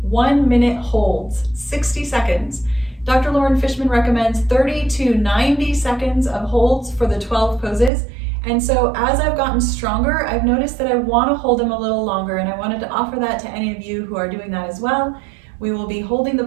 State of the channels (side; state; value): left; drops out; at 7.9 s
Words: 1 minute holds, 60 seconds. Dr. Loren Fishman recommends 30 to 90 seconds of holds for the 12 poses. And so as I've gotten stronger, I've noticed that I want to hold them a little longer, and I wanted to offer that to any of you who are doing that as well. We will be holding the